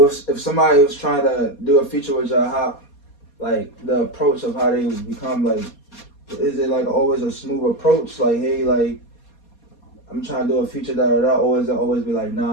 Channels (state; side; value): late; right; 4.2 ms